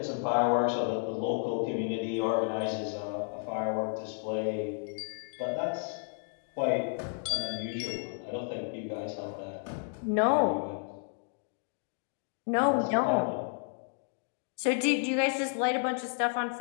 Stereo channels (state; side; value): silent; right; 56 dB below the other